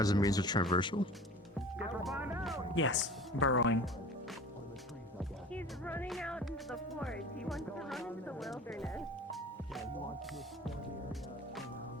a means of traversal? Yes, burrowing. He's running out into the forest. He wants to run into the wilderness.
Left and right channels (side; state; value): both; normal; correlation 0.40